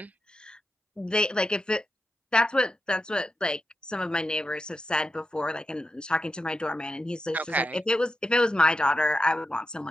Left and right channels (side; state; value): both; normal; correlation 0.88